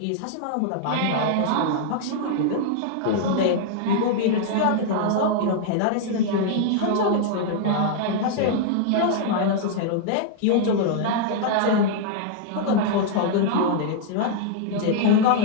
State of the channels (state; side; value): different; both; correlation -0.01